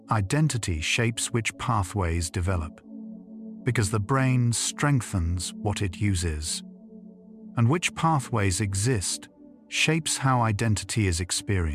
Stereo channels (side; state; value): both; identical; correlation 1.00